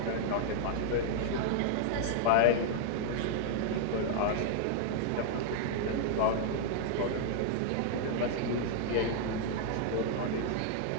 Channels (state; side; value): different; both; correlation -0.01